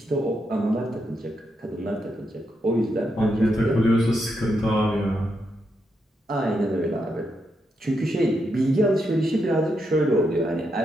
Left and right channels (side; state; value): both; normal; correlation 0.82